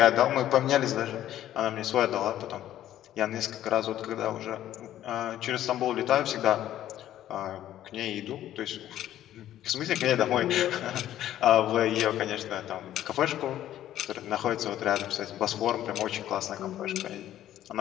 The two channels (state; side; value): quieter; right; 12.4 dB